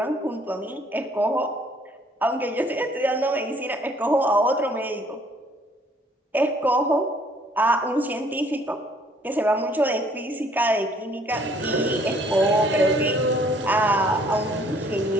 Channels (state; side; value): normal; both; correlation 0.61